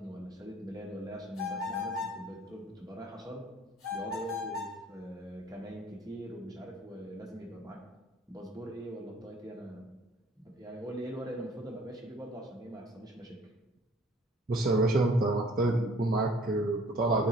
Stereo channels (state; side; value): normal; both; correlation 0.54